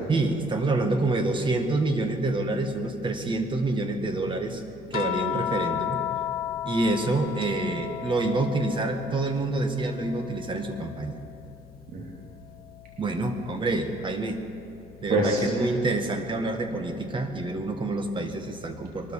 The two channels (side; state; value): left; noise; hum, 22 dB below the sound